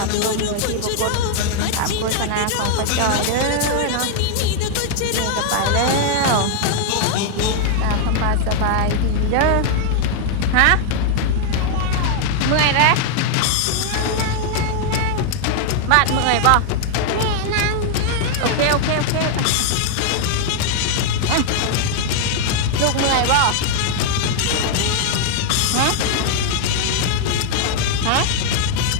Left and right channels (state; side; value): different; both; correlation 0.00